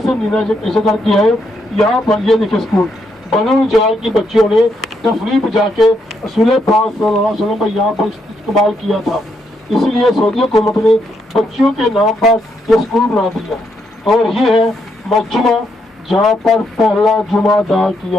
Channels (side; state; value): both; normal; correlation 0.77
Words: سے مدینہ ہجرت کیا ہے، یہاں پر یہ دیکھیں اسکول بنو نجار کی بچیوں نے تفریح پہ جا کے رسول پاک صلی اللہ علیہ وسلم کا یہاں پر استقبال کیا تھا، اس لیے سعودی حکومت نے بچوں کے نام پر یہ اسکول بنا دیا، اور یہ ہے مجمع جہاں پر پہلا جمعہ ادا